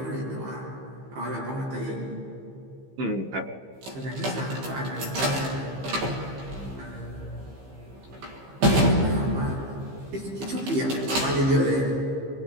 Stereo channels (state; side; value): late; left; 15 ms